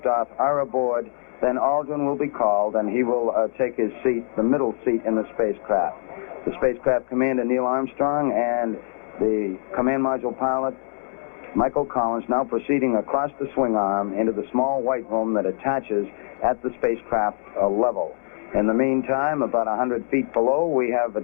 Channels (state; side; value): silent; right; digital silence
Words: are aboard, then Aldrin will be called, and he will take his seat, the middle seat in the spacecraft. The spacecraft commander, Neil Armstrong, and the command module pilot, Michael Collins, now proceeding across the swing arm into the small White Room that attaches at the spacecraft level. In the meantime, about 100 feet below, we have a